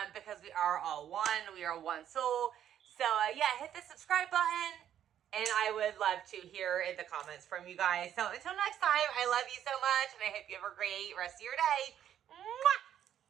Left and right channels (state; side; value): quieter; left; 10.3 dB